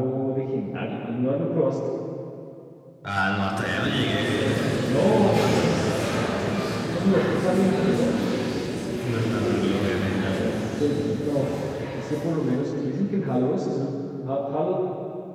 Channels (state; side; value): identical; both; correlation 1.00